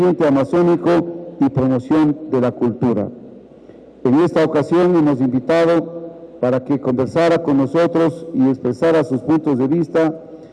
amazónico y promoción de la cultura. En esta ocasión hemos invitado para que conversara con nosotros y expresara sus puntos de vista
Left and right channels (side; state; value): both; identical; correlation 1.00